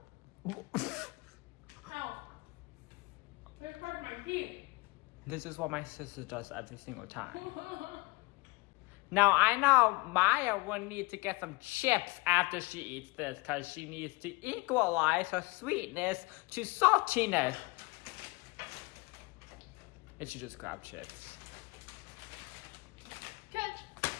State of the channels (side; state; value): right; quieter; 25.1 dB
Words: Ow. It hurt my feet. This is what my sister does every single time. Now, I know Maya will need to get some chips after she eats this because she needs to equalize her sweetness to saltiness. If she just grab chips. Catch.